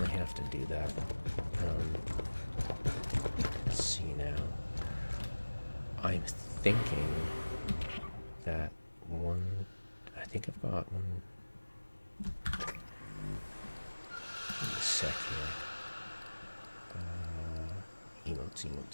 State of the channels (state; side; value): inverted; both; correlation -1.00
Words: have to do that. Let's see now. I'm thinking that one. I think I've got one. Give me a sec here. Emotes.